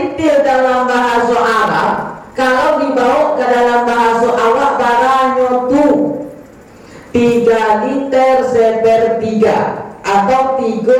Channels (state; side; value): identical; both; correlation 1.00